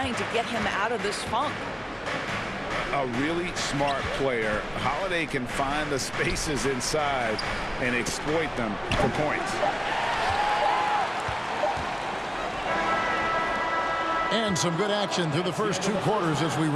to get him out of this funk. A really smart player. Holiday can find the spaces inside and exploit them for points. And some good action through the first 2 quarters as we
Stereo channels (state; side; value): identical; both; correlation 1.00